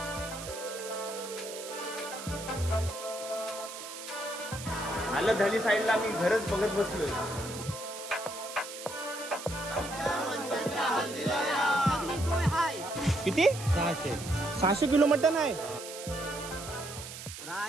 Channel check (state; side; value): noise; right; hiss, 11 dB below the sound